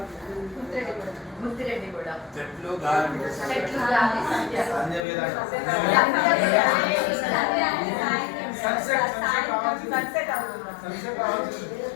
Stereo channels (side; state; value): right; drops out; at 5.0 s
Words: Muthireddy కూడా. చెట్లు గాలి. చెట్లు గాలి సంధ్య.